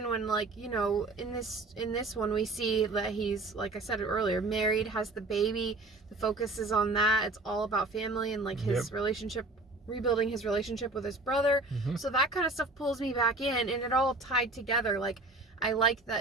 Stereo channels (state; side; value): quieter; left; 3.1 dB